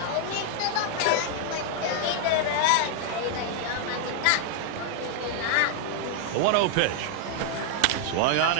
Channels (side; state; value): both; different; correlation 0.00